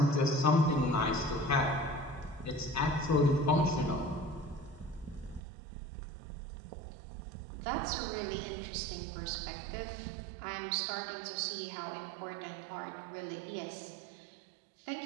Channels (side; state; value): left; drops out; at 5.4 s